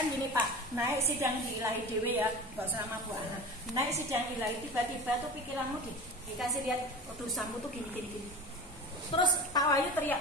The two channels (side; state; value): both; normal; correlation 0.33